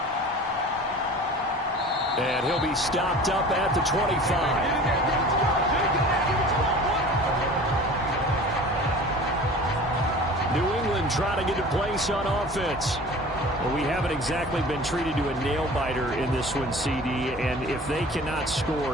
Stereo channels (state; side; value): normal; both; correlation 0.41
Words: And he'll be stopped up at the 25. New England trying to get a place on offense. Well, we haven't exactly been treated to a nail-biter in this one, CD, and if they cannot